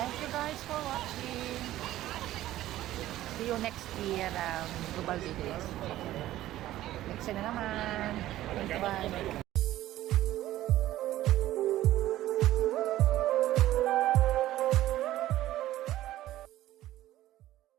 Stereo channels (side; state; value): left; quieter; 14.5 dB